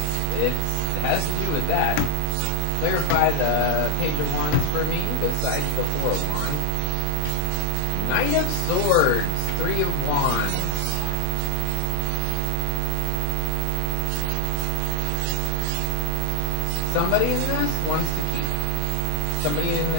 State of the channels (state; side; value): different; both; correlation 0.00